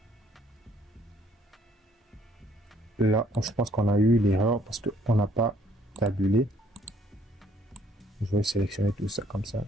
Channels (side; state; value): both; normal; correlation 0.64